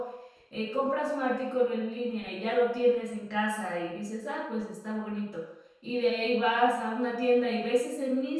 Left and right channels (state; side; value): identical; both; correlation 1.00